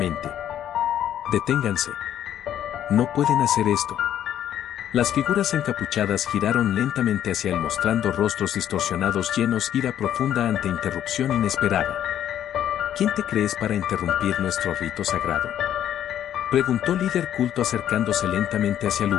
«Deténganse. No pueden hacer esto». Las figuras encapuchadas giraron lentamente hacia él mostrando rostros distorsionados llenos de ira profunda ante interrupción inesperada. ¿Quién te crees para interrumpir nuestro rito sagrado?, preguntó líder culto acercándose lentamente hacia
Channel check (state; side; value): quieter; right; 10.7 dB